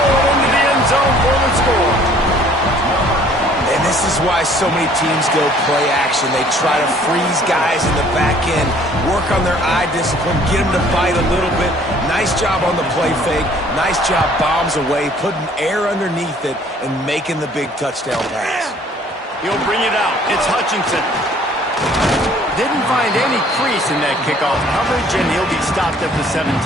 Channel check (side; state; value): both; normal; correlation 0.56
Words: into the end zone for the score. And this is why so many teams go play action. They try to freeze guys in the back end, work on their eye discipline, get them to bite a little bit. Nice job on the play fake. Nice job bombs away, putting air underneath it, and making the big touchdown pass. He'll bring it out. It's Hutchinson. Didn't find any crease in that kickoff coverage, and he'll be stopped at the 17.